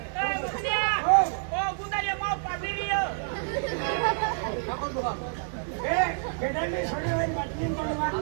गुंडारिया माव पाबिरियो ए गेडा में छोड़े हुए बाटलीन बनवा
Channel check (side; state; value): left; silent; digital silence